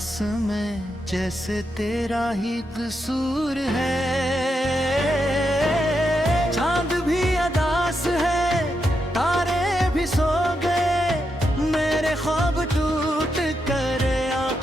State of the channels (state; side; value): normal; both; correlation 0.84